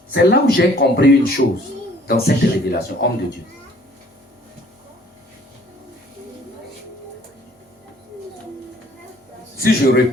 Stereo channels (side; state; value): both; normal; correlation 0.56